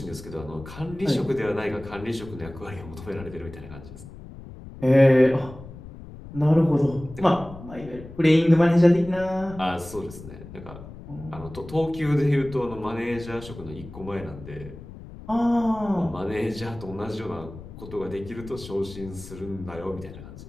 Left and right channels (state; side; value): noise; left; rumble, 15 dB below the sound